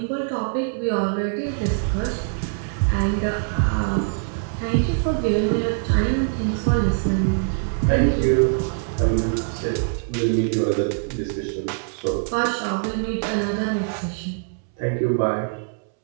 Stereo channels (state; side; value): silent; left; 63 dB below the other